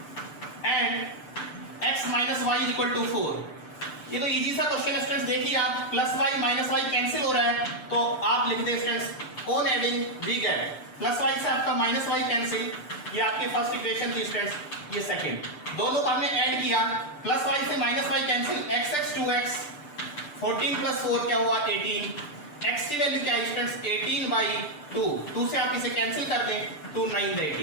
and x minus y is equal to 4। ये तो इजी सा क्वेश्चन है स्टूडेंट्स, देखिए आप plus y minus y cancel हो रहा है, तो आप लिख दें students on adding we get plus y से आपका माइनस वाई कैंसिल, ये आपकी फर्स्ट इक्वेशन थी स्टूडेंट्स, ये सेकंड। दोनों को हमने ऐड किया, प्लस वाई से minus y cancel, x 2x 14 plus 4 क्या हुआ 18, x की वैल्यू क्या है स्टूडेंट्स 18/2, 2 से आप इसे कैंसिल कर दें, 2 9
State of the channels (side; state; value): right; late; 6.8 ms